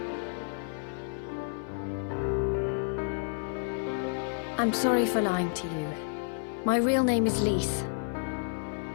I'm sorry for lying to you. My real name is Lise.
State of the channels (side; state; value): right; silent; digital silence